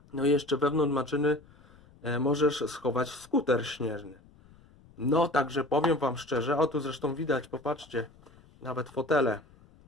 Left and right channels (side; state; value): left; noise; rumble, 26 dB below the sound